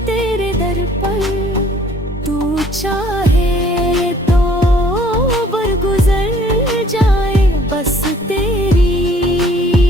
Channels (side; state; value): both; normal; correlation 0.57